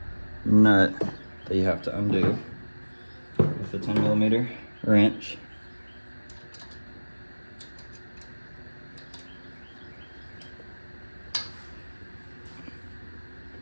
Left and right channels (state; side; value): inverted; both; correlation -1.00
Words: nut that you have to undo with the 10mm wrench.